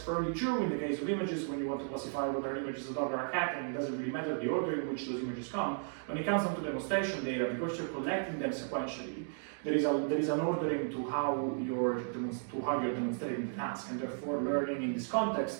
true in the case of images, when you want to classify whether an image is a dog or a cat, and it doesn't really matter the order in which those images come, when it comes down to demonstration data, because you're collecting them sequentially, there is an ordering to how you're demonstrating the task, and therefore learning in this context,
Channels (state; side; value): silent; left; digital silence